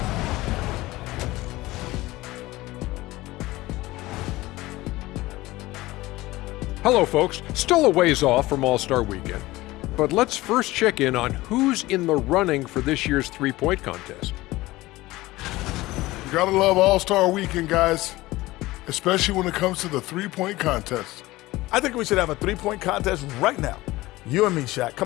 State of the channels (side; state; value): right; quieter; 18.8 dB